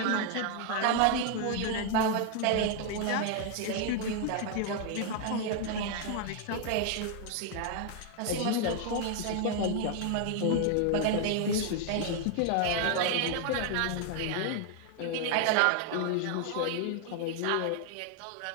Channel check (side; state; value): both; different; correlation 0.00